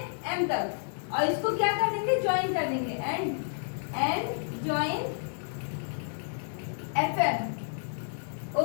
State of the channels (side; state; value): right; silent; 57 dB below the other